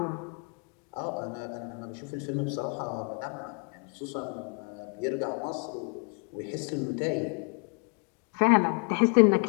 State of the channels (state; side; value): quieter; right; 36.6 dB